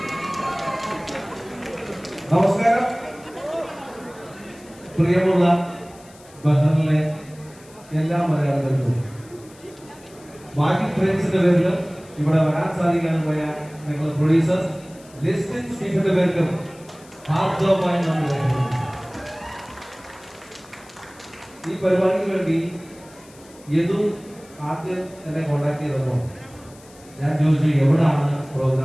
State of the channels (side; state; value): left; noise; hiss, 24 dB below the sound